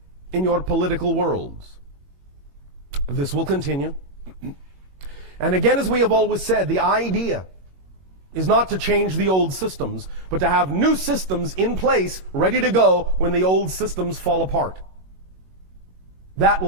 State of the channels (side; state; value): left; late; 22 ms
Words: in your political worlds. This will continue. And again, as we have always said, the idea is not to change the old systems, but to have new systems in place, ready to go when the old systems fall apart. That